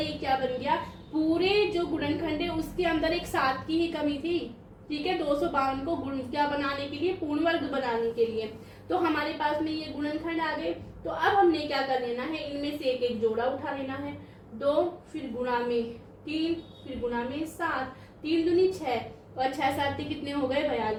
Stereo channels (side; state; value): both; identical; correlation 1.00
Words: क्या बन गया, पूरे जो गुणनखंड है उसके अंदर एक 7 की ही कमी थी। ठीक है, 252 को गुण क्या बनाने के लिए, पूर्ण वर्ग बनाने के लिए। तो हमारे पास में ये गुणनखंड आ गए। तो अब हमने क्या कर लेना है, इनमें से एक एक जोड़ा उठा लेना है, 2 फिर गुणा में 3 फिर गुणा में 7, 3 दूनी 6 और 6 7 कितने हो गए,